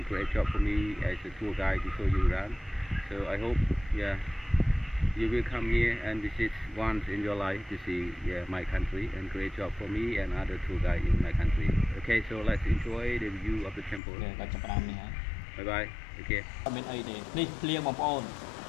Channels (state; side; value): drops out; right; at 14.0 s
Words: create job for me as a tour guide to show you around. So I hope you will come here and visit once in your life to see my country and create job for me and other tour guide in my country. Okay, so let's enjoy the view of the temple. Bye bye. Okay. មានអីទេនេះភ្លៀងបងប្អូន